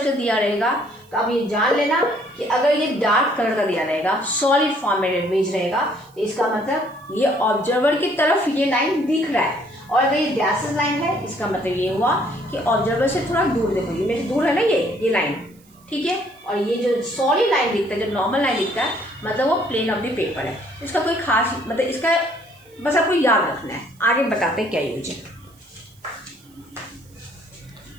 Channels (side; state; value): right; noise; hiss, 30 dB below the sound